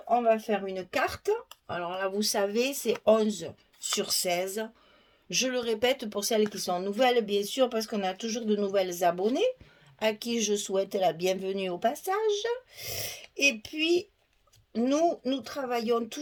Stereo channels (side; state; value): both; identical; correlation 1.00